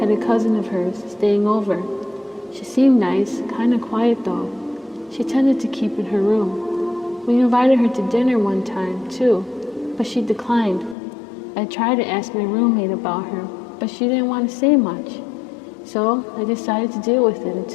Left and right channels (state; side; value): drops out; right; at 11.0 s